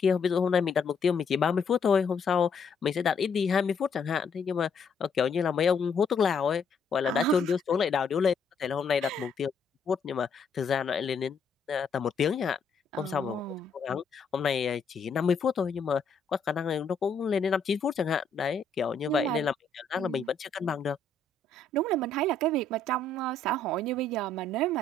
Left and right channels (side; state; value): right; quieter; 3.7 dB